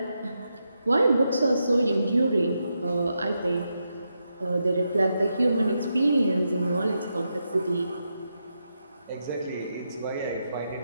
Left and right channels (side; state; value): both; inverted; correlation -0.85